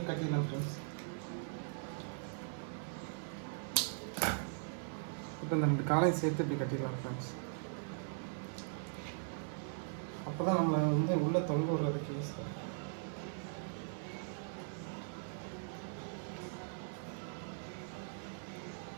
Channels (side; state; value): left; silent; 51 dB below the other